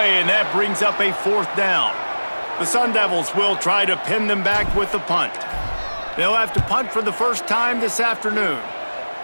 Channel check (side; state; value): both; inverted; correlation -1.00